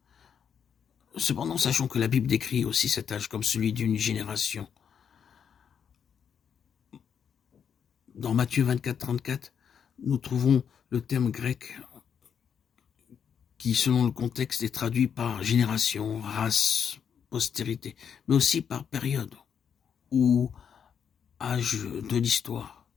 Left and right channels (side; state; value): right; quieter; 7.6 dB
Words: Cependant, sachons que la Bible décrit aussi cet âge comme celui d'une génération. Dans Matthieu 24, 34, nous trouvons le terme grec qui, selon le contexte, est traduit par génération, race, postérité, mais aussi par période ou âge de l'histoire.